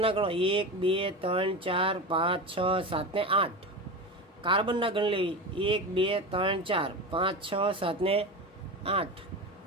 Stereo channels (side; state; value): both; normal; correlation 0.25